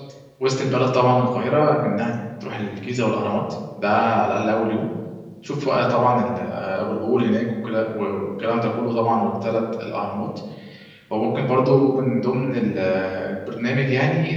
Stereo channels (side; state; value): both; identical; correlation 1.00